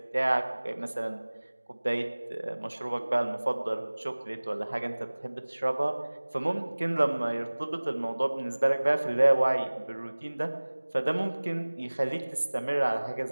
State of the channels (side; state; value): both; inverted; correlation -1.00